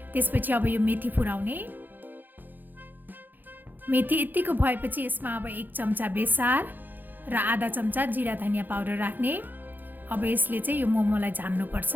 त्यसपछि अब यो मेथी फुराउने। मेथी यतिको भएपछि यसमा अब 1 चम्चा बेसार र आधा चम्चा जिरा धनिया पाउडर राख्ने। अब यसले चाहिँ यो मोमोलाई झान्नुपर्छ।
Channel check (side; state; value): left; late; 0.088 ms